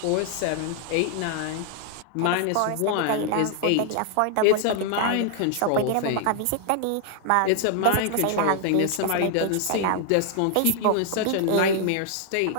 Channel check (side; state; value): both; different; correlation 0.00